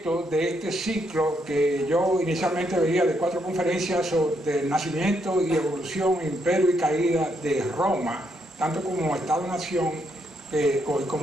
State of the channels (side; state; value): both; normal; correlation 0.77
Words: de este ciclo que yo inicialmente veía de 4 conferencias sobre el nacimiento y evolución, imperio y caída de Roma, tanto como Estado-nación